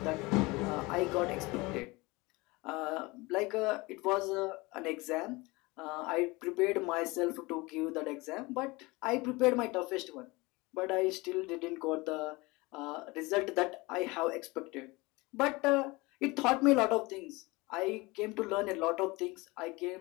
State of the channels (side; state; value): right; quieter; 23.6 dB